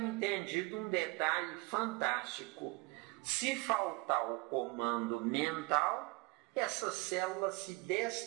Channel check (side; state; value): left; quieter; 24.5 dB